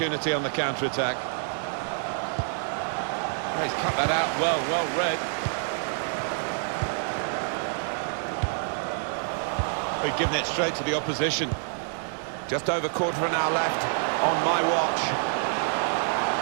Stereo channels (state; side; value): silent; left; 60 dB below the other